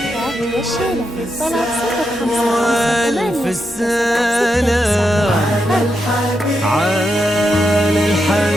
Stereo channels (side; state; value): both; normal; correlation 0.84